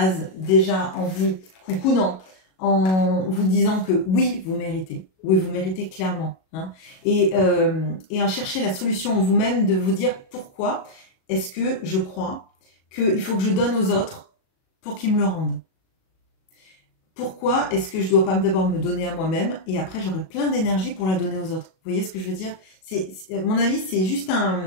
déjà en vous coucounant, en vous disant que oui, vous méritez. Oui, vous méritez clairement. Hein, et en chercher la solution en vous-même, de vous dire pourquoi est-ce que je crois qu'il faut que je donne aux autres pour qu'ils me le rendent. Pourquoi est-ce que je ne dois pas d'abord me donner à moi-même et après j'aurai plein d'énergie pour la donner aux autres? Vous voyez ce que je veux dire? À mon avis, c'est juste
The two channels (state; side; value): late; right; 37 ms